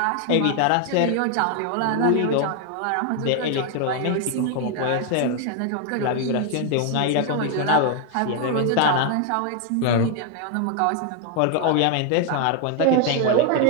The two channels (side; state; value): both; different; correlation 0.00